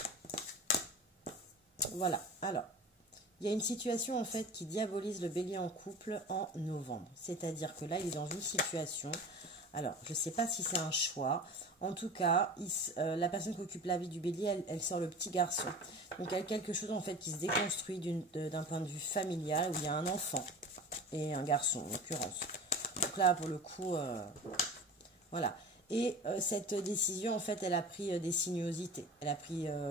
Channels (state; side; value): normal; both; correlation 0.36